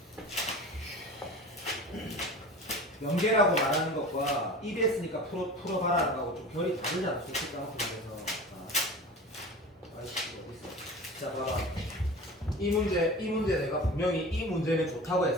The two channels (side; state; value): both; normal; correlation 0.36